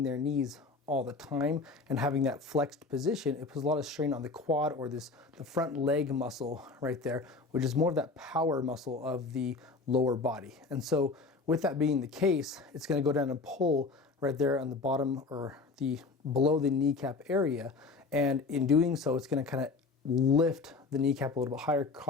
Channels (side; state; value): right; quieter; 4.0 dB